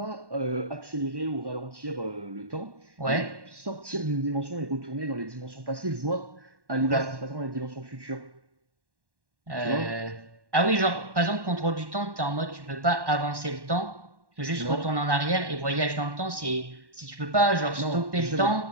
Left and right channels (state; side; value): late; left; 1.1 ms